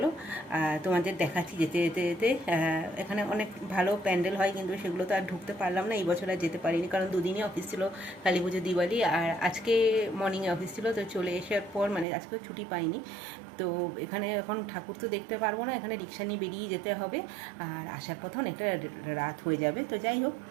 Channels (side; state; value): left; drops out; at 12.1 s